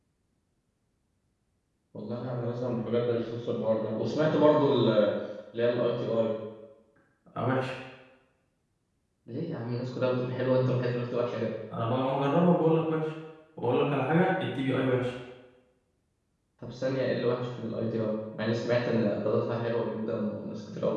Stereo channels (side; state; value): both; identical; correlation 1.00